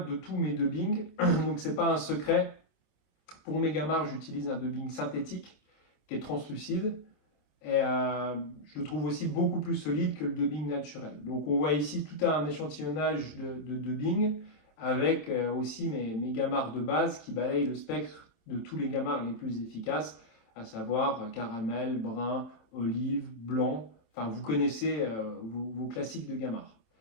de tous mes dubbings. Donc, c'est pas un secret. Pour mes gamards, j'utilise un dubbing synthétique qui est translucide. Et je le trouve aussi beaucoup plus solide que le dubbing naturel. Donc on voit ici tout un échantillonnage de dubbing avec aussi mes gamards de base qui balayent le spectre de tous les gamards les plus efficaces, à savoir caramel, brun, olive, blanc. Enfin, vous connaissez vos classiques de gamards.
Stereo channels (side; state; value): right; late; 26 ms